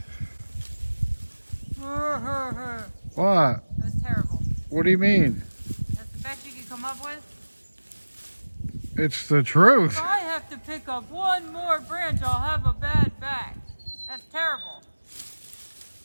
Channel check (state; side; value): inverted; both; correlation -1.00